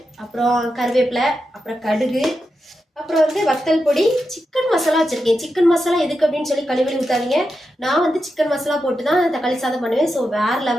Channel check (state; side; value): normal; both; correlation 0.88